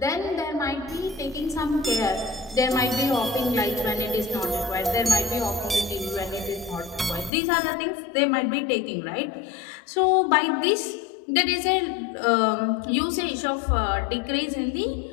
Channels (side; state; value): right; drops out; at 7.3 s